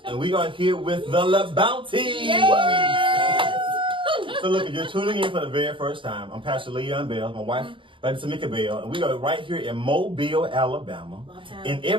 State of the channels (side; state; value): left; late; 0.25 ms